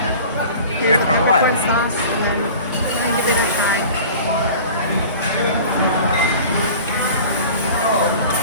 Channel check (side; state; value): both; inverted; correlation -0.41